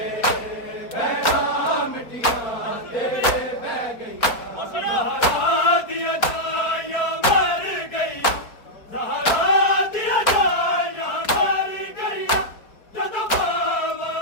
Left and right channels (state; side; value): late; right; 4.4 ms